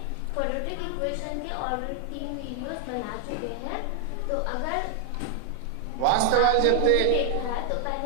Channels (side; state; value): both; different; correlation 0.00